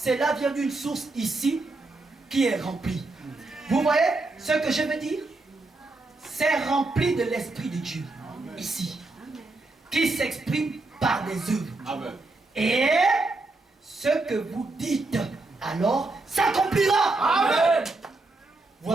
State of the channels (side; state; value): left; quieter; 3.2 dB